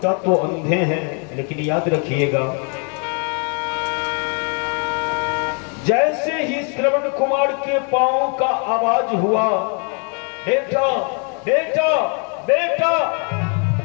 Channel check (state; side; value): quieter; right; 38.7 dB